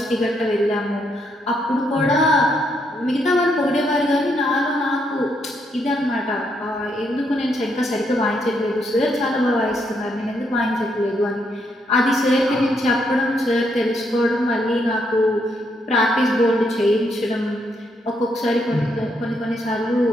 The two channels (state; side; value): normal; both; correlation 0.76